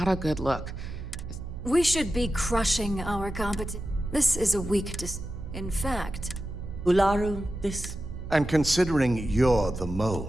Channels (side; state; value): right; noise; hum, 10 dB below the sound